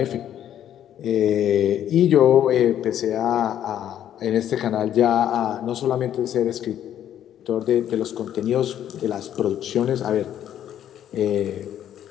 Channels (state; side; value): quieter; right; 10.7 dB